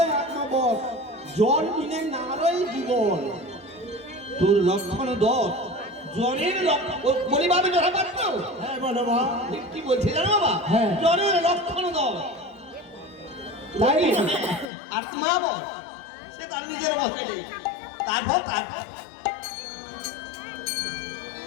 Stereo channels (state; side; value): drops out; right; at 14.7 s